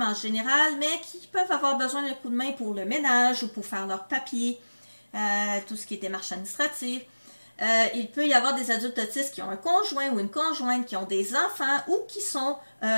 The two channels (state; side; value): inverted; both; correlation -1.00